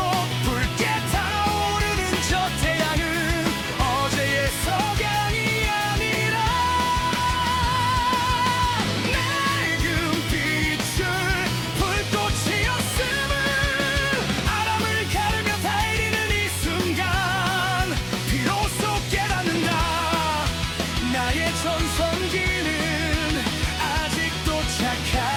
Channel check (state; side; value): identical; both; correlation 1.00